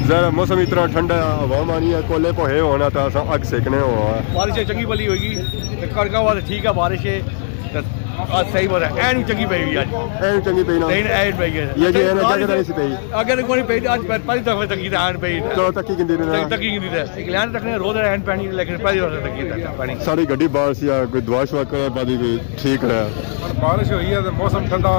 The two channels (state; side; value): silent; right; digital silence